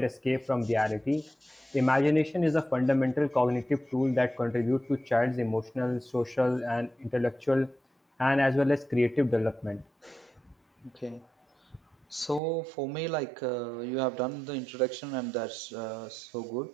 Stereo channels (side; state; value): left; drops out; at 12.4 s